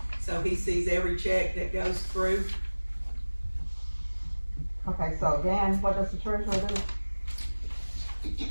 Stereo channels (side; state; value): both; inverted; correlation -1.00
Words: so he sees every check that goes through. Okay, so again, what does the treasurer do?